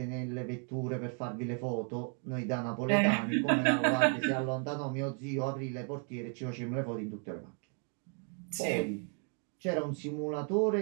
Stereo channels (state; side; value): quieter; left; 39.3 dB